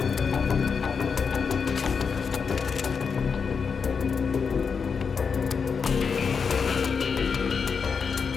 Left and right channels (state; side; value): quieter; right; 5.8 dB